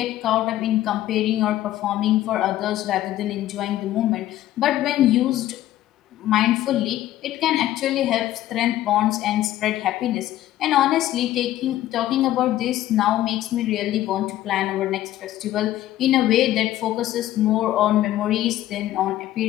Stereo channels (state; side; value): quieter; right; 13.8 dB